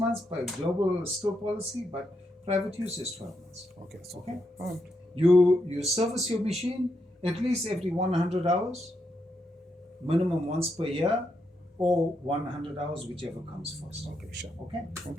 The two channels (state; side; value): normal; both; correlation 0.81